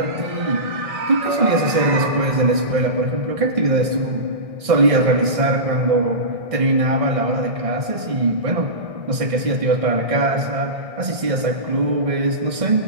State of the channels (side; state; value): left; late; 1.6 ms